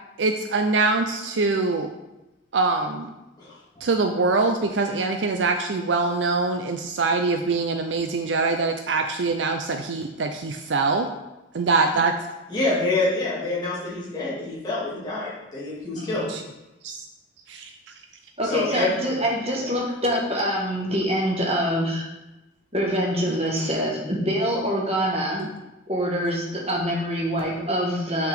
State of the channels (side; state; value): both; normal; correlation 0.12